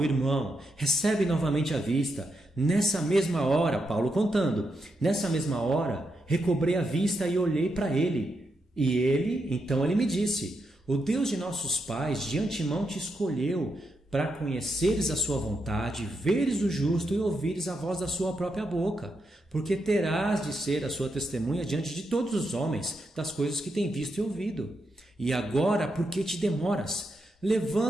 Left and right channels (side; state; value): both; normal; correlation 0.83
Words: irmão, recebe novamente a vista. Nessa mesma hora, Paulo contando, nessa mesma hora, recobrei a vista e olhei para ele. E então ele me disse: o Deus de nossos pais de antemão te escolheu para conheceres a sua vontade, veres o justo e ouvires a voz da sua própria boca, porque terás de ser a sua testemunha diante de todos os homens das coisas que tem visto e ouvido. E agora, por que te demoras?